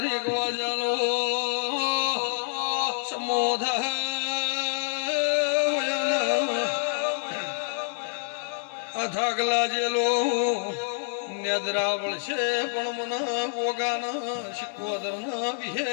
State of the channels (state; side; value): silent; right; 60 dB below the other